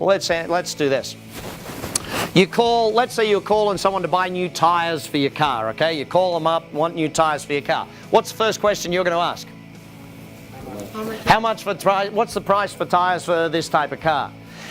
let's do this. Let's say you're calling someone to buy new tires for your car, okay? You call them up, want new tires for your car. What's the first question you're going to ask? What's the price for tires for this type of car?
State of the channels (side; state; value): both; identical; correlation 1.00